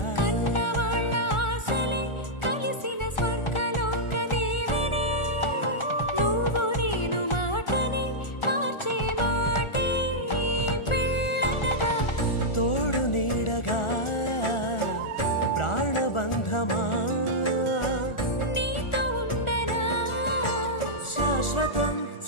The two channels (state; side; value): late; right; 1.4 ms